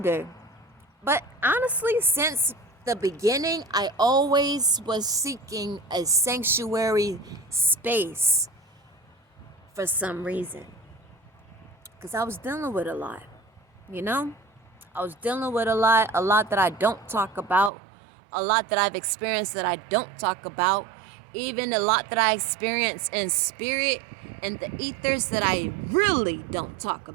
but honestly, since the beginning, I always was seeking a sanctuary space for some reason. Because I was dealing with a lot, you know? I was dealing with a lot that I don't talk about, a lot that I've experienced that I don't talk about, even a lot that I experience in spirit and the ethers that I really don't talk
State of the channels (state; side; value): drops out; left; at 17.7 s